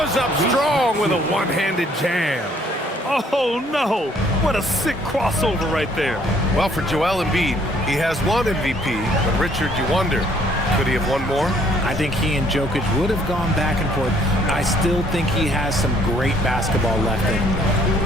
up strong with a one-handed jam. Oh, no. What a sick crossover right there. Well, for Joel Embiid, he has one MVP, but Richard, you wonder, could he have won more? I think he and Jokic would have gone back and forth. I still think he has some great basketball left in him.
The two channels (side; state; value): both; normal; correlation 0.62